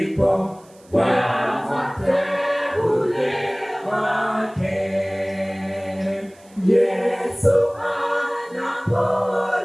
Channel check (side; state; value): right; noise; hiss, 29 dB below the sound